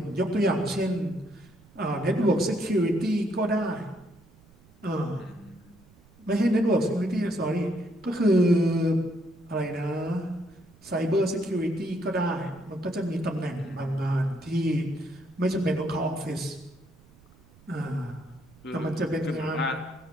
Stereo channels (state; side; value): noise; right; rumble, 27 dB below the sound